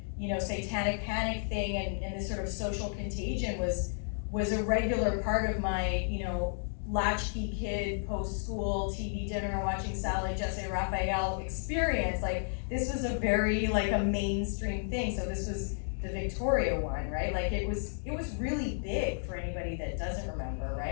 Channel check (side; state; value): right; silent; digital silence